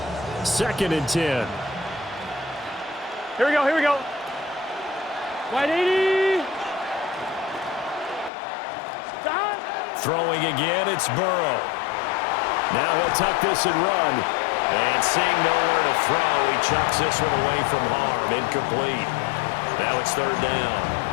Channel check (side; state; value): right; drops out; at 8.3 s